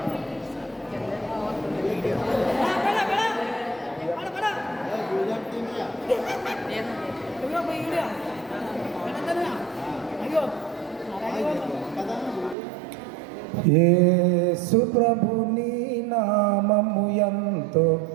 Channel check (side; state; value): left; drops out; at 12.6 s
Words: యేసు ప్రభుని నామము ఎంతో